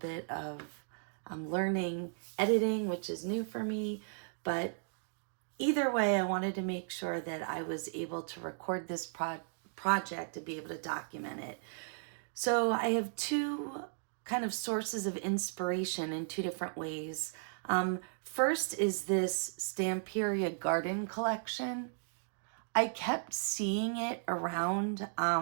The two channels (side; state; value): left; silent; digital silence